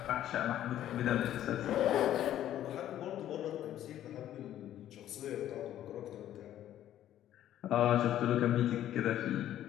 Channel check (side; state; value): right; quieter; 12.0 dB